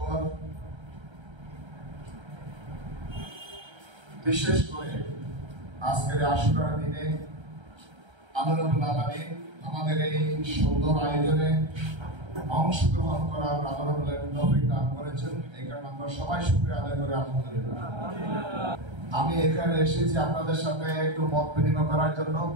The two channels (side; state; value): left; late; 1.3 ms